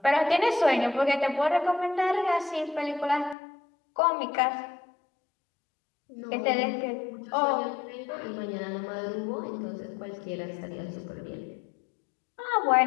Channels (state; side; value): drops out; right; at 3.4 s